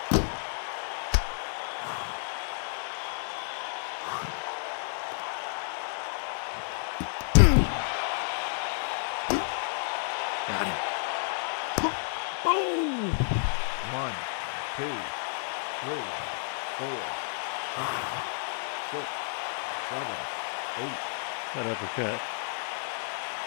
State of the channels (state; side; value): silent; right; 57 dB below the other